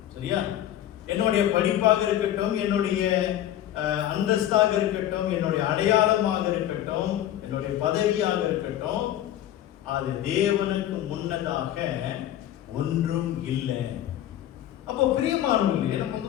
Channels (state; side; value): quieter; right; 12.1 dB